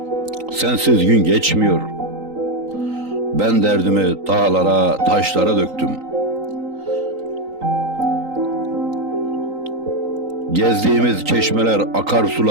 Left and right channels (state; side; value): late; left; 3.9 ms